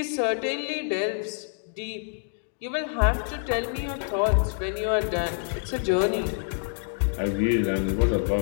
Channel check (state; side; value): silent; right; 60 dB below the other